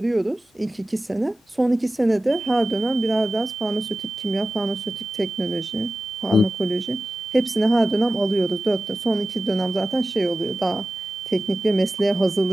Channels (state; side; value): normal; both; correlation 0.95